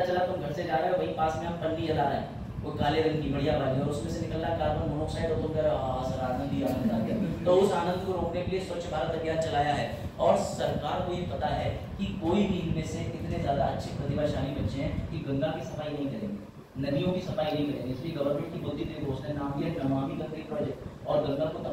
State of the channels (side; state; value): both; identical; correlation 1.00